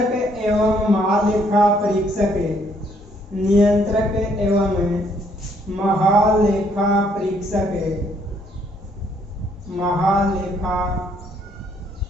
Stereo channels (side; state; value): both; normal; correlation 0.67